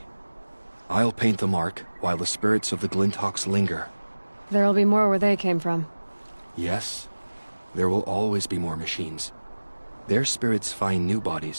I'll paint the mark while the spirits of the Glinthawks linger. There'll be more where they came from. Yes, there will always be more machines. Their spirits find new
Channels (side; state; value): both; inverted; correlation -1.00